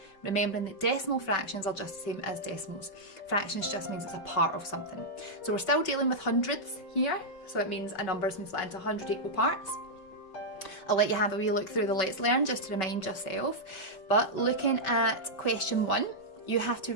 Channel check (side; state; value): right; late; 5.2 ms